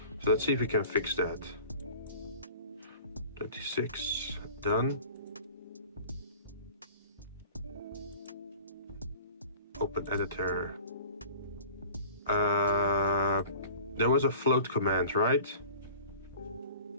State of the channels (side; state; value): both; inverted; correlation -0.43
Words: So let's see if we can fix that. 26, done. Open editor. There was a float command, right?